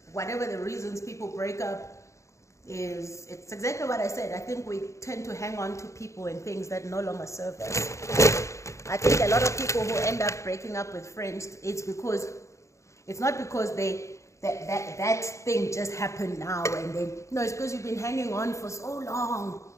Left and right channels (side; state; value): right; late; 0.14 ms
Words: Whatever the reasons people break up it's exactly what I said. I think we tend to hang on to people and things that no longer serve us. I think a lot of people who end up breaking up with friends, it's not because that thing just happened now and then. No, it's because you've been hanging on for so long,